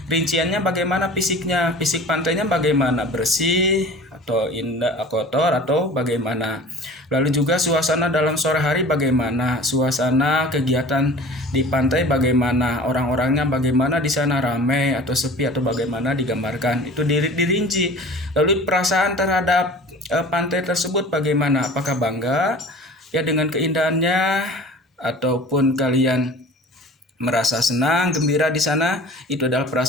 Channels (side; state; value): both; normal; correlation 0.42